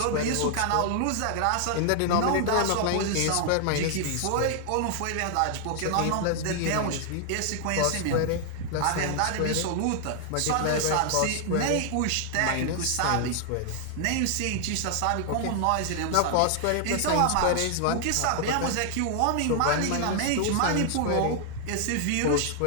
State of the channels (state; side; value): different; both; correlation 0.00